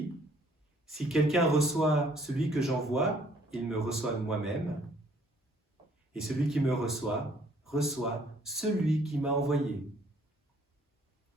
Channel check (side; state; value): both; normal; correlation 0.61